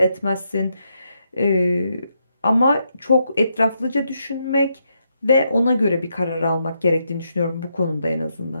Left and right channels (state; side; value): inverted; both; correlation -0.80